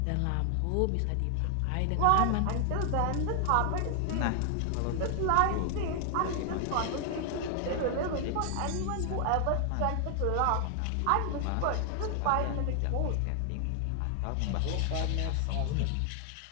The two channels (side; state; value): both; different; correlation 0.00